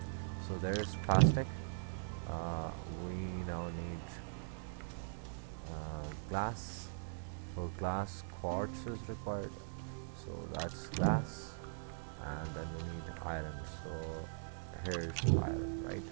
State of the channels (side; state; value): left; silent; 50 dB below the other